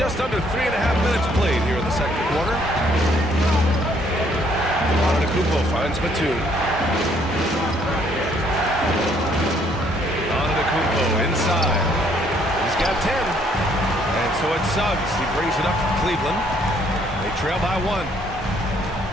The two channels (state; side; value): normal; both; correlation 0.66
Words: under 3.5 minutes played here in the second quarter. Antetokounmpo finds Batum. Antetokounmpo inside. He's got 10. And so it's Suggs. He brings it up from Cleveland. They trail by 1.